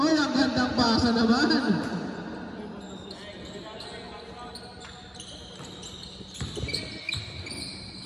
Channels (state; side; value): identical; both; correlation 1.00